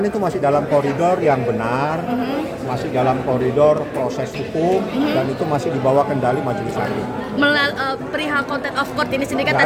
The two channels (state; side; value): identical; both; correlation 1.00